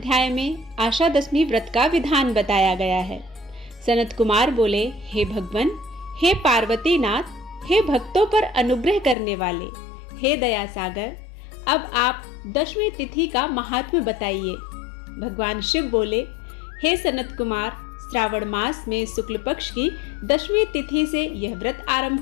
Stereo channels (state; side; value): drops out; right; at 9.2 s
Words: में आशा दशमी व्रत का विधान बताया गया है। सनत कुमार बोले, हे भगवान, हे पार्वती नाथ, हे भक्तों पर अनुग्रह करने वाले, हे दया सागर, अब आप दशमी तिथि का महात्म्य बताइए। भगवान शिव बोले, हे सनत कुमार, श्रावण मास में शुक्ल पक्ष की दशमी तिथि से यह व्रत